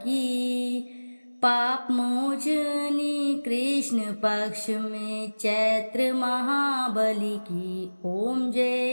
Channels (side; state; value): both; inverted; correlation -1.00